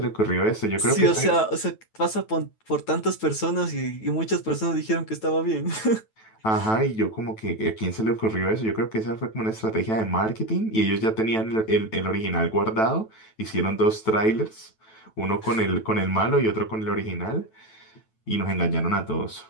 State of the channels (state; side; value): late; right; 9.2 ms